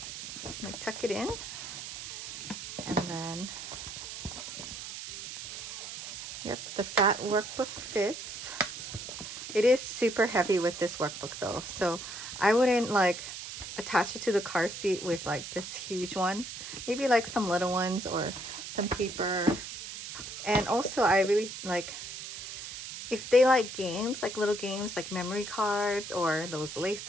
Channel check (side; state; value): right; noise; hiss, 9 dB below the sound